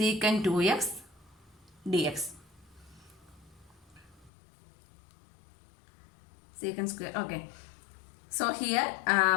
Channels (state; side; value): drops out; right; at 4.3 s